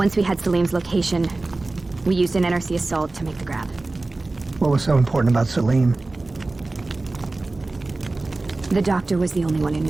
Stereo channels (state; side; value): quieter; left; 3.2 dB